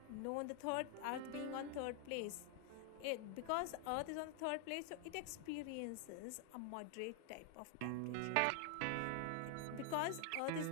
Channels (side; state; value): both; different; correlation 0.00